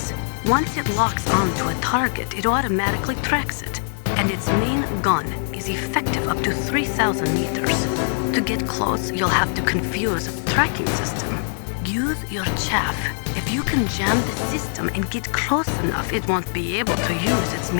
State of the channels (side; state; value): right; silent; digital silence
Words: Once it locks onto a target, it automatically tracks it, and its main gun is effective up to 3,000 meters. To get close, you'll have to confuse a tracking system. Use your chaff. If you can jam the system and get close enough, it won't be able to use its